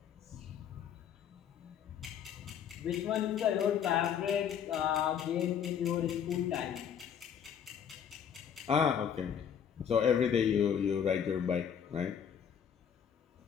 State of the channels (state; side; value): quieter; right; 8.3 dB